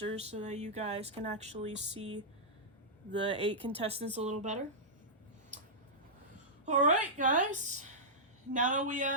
so that you guys can actually see the 8 contestants a little better. Alright guys, now that we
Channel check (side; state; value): both; normal; correlation -0.12